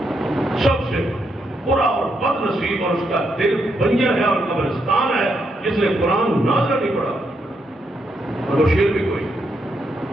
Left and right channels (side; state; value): both; normal; correlation 0.79